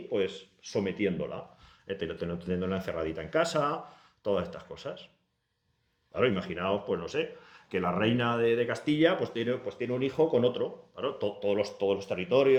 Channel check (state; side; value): identical; both; correlation 1.00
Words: pues sometiéndola, teniéndola encerradita en casa, todas estas cosas. Claro, imaginaos, pues no sé, que la reina de Castilla pues tiene un hijo con otro. Claro, todos los